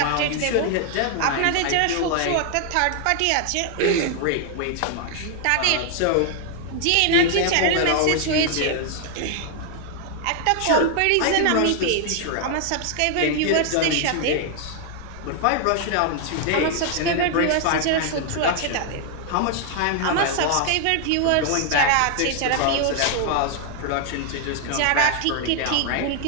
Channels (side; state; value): both; different; correlation 0.00